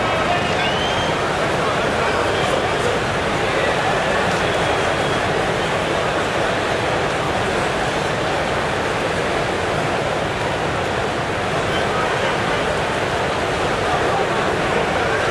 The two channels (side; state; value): both; identical; correlation 1.00